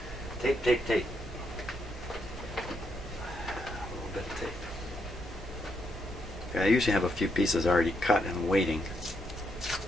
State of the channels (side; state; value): both; normal; correlation 0.79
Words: Tape, tape, tape. A little bit of tape. Okay, I usually have a few pieces already cut and waiting.